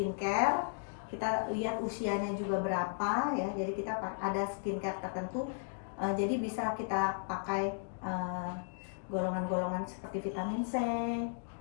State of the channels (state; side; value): silent; right; digital silence